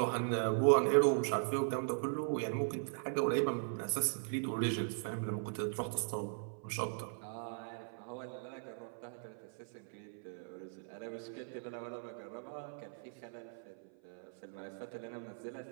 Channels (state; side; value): silent; left; 52 dB below the other